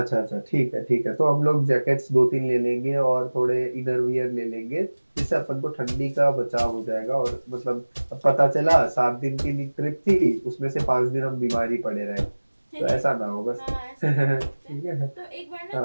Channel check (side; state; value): both; inverted; correlation -1.00